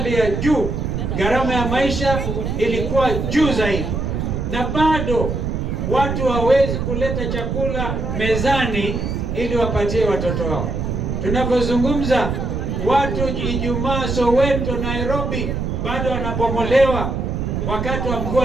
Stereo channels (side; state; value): right; noise; rumble, 2 dB below the sound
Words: ya juu, gharama ya maisha ilikuwa juu zaidi, na bado watu hawezi kuleta chakula mezani ili wapatie watoto wao. Tunapozungumza, watu Ijumaa Soweto, Nairobi bado wanabomolewa wakati wa